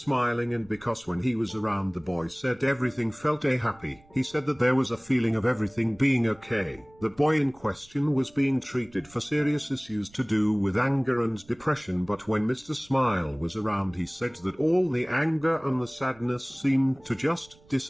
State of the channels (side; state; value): right; noise; rumble, 28 dB below the sound